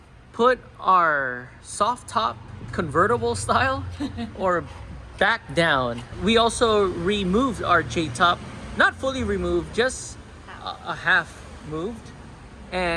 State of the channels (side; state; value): both; identical; correlation 1.00